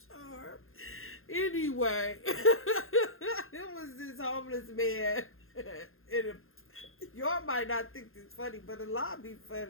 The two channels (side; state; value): right; late; 0.61 ms